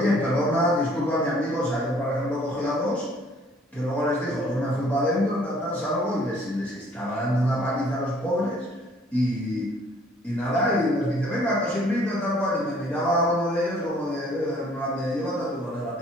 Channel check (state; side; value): normal; both; correlation 0.58